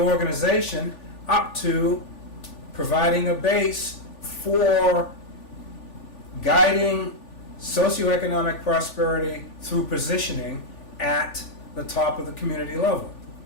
up to providing a base for guiding socioeconomic prosperity through positioning at the top of the community level.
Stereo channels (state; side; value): late; right; 3.4 ms